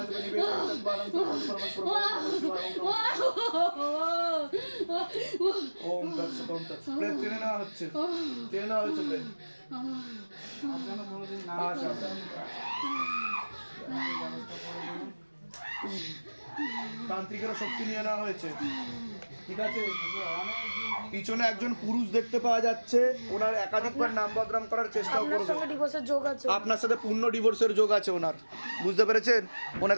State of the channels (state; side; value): inverted; both; correlation -1.00